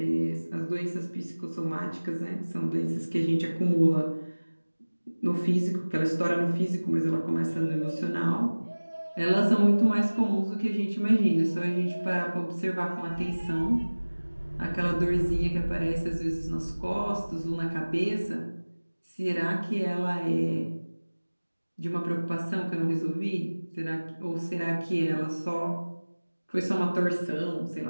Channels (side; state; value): both; inverted; correlation -1.00